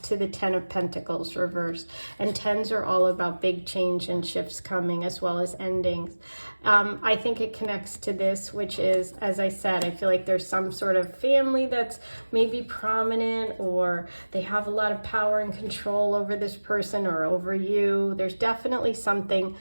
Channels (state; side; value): inverted; both; correlation -1.00